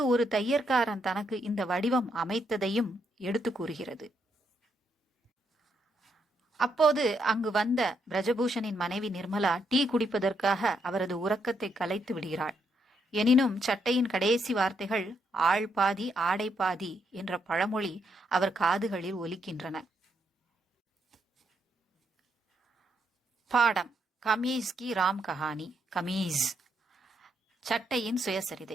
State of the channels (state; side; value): normal; both; correlation 0.77